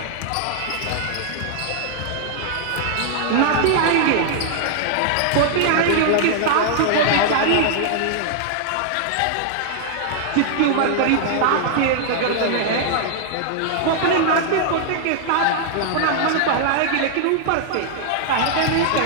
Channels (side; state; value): both; different; correlation -0.01